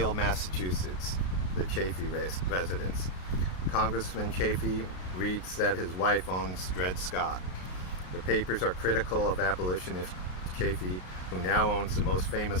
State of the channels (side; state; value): right; late; 33 ms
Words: Massachusetts, the Chaffee residence. Congressman Chaffee reads that his wife owns Dred Scott. The papers are critical of abolitionist Chaffee, who now owns the most